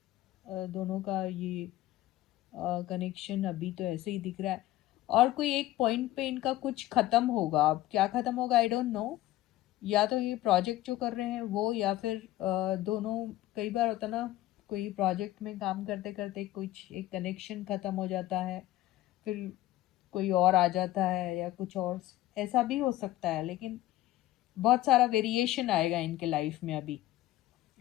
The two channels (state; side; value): quieter; right; 15.5 dB